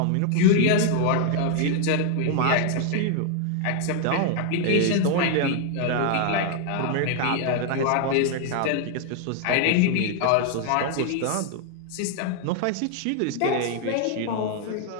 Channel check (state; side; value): different; both; correlation 0.00